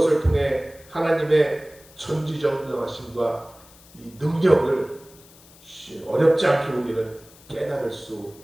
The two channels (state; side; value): noise; left; hiss, 24 dB below the sound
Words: 통해 하나님의 전지전능하심과 이 능력을 어렵지 않게 우리는 깨달을 수